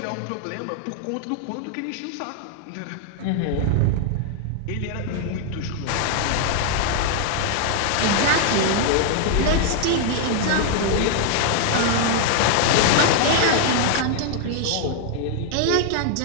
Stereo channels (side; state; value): both; different; correlation 0.00